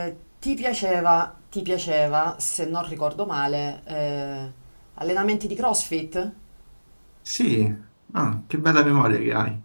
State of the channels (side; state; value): both; inverted; correlation -1.00